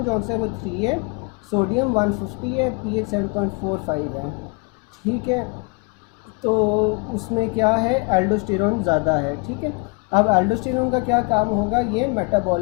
जौन सा है वो 3 है, सोडियम 150 है, पीएच 7.45 है, ठीक है। तो उसमें क्या है एल्डोस्टेरॉन ज़्यादा है, ठीक है। अब एल्डोस्टेरॉन का क्या काम होगा? ये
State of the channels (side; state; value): right; quieter; 30.2 dB